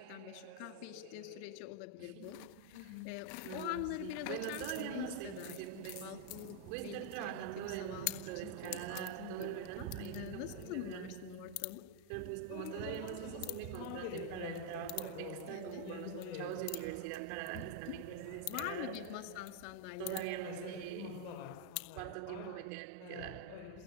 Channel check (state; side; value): different; both; correlation 0.00